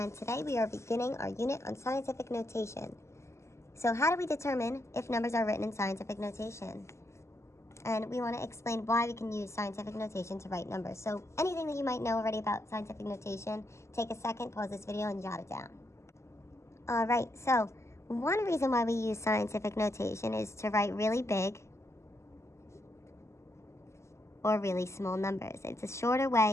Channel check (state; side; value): late; right; 0.13 ms